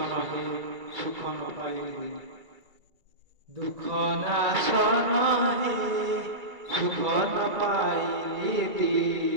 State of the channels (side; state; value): left; late; 1.9 ms